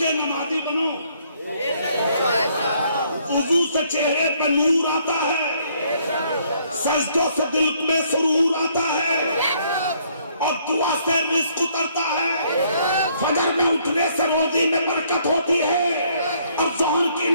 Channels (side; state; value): both; inverted; correlation -0.66